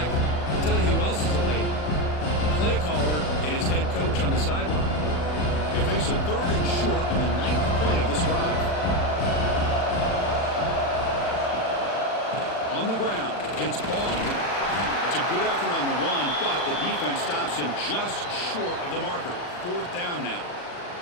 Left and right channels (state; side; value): late; right; 40 ms